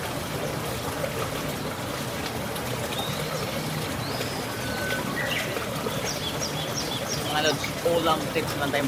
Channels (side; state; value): both; identical; correlation 1.00